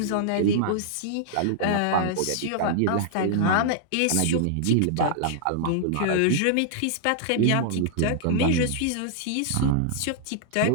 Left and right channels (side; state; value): both; different; correlation -0.01